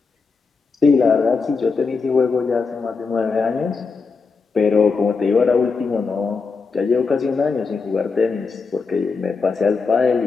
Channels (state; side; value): quieter; right; 4.8 dB